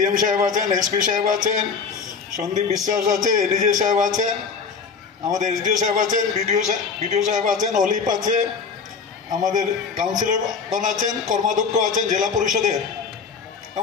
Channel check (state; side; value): quieter; right; 5.5 dB